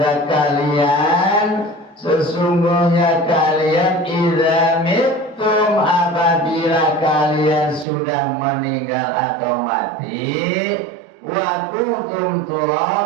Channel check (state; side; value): drops out; left; at 7.9 s